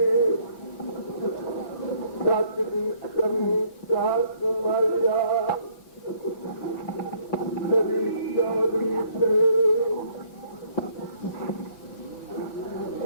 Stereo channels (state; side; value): late; right; 6.1 ms